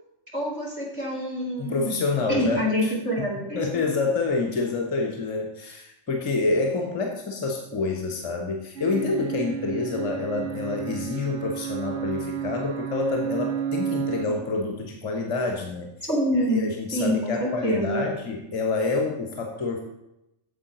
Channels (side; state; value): left; late; 2.6 ms